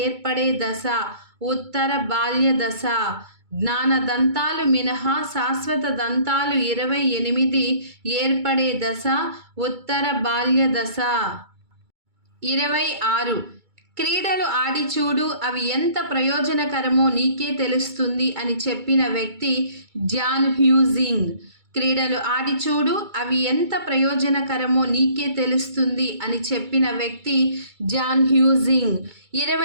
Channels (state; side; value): late; left; 2.3 ms